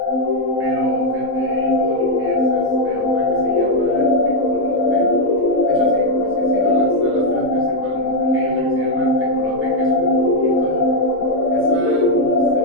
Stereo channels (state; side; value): normal; both; correlation 0.02